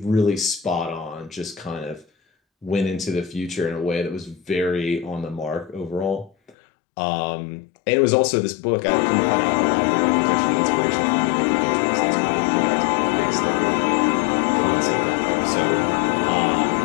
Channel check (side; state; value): right; drops out; at 6.6 s